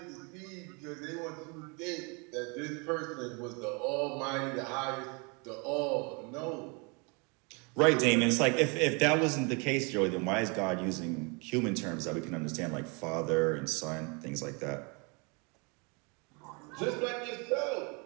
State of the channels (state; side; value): quieter; left; 31.5 dB